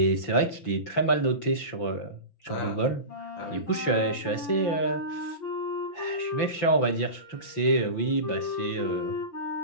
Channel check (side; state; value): right; late; 5.9 ms